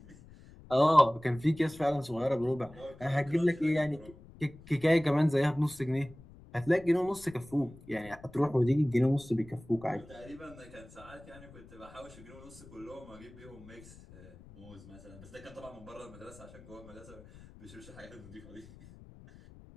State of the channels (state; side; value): noise; left; rumble, 20 dB below the sound